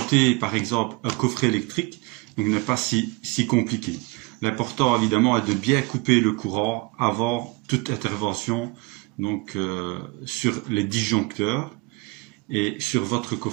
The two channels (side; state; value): left; quieter; 25.3 dB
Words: par exemple un coffret électrique n'est pas si compliqué. L'important évidemment est de bien couper le courant avant toute intervention donc sur les disjoncteurs et sur votre